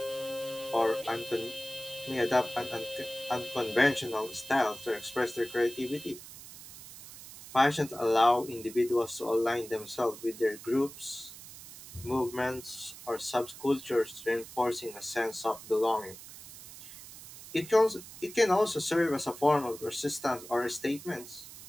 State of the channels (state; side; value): noise; right; hiss, 15 dB below the sound